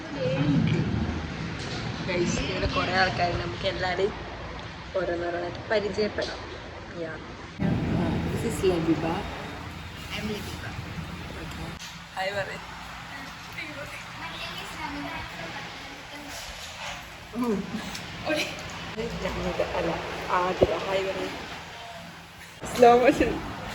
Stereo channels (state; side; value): identical; both; correlation 1.00